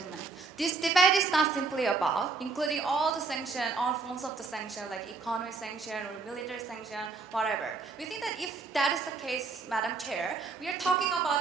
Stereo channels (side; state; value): left; quieter; 4.3 dB